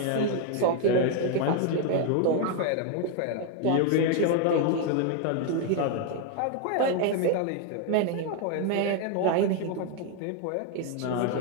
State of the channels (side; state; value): both; different; correlation 0.01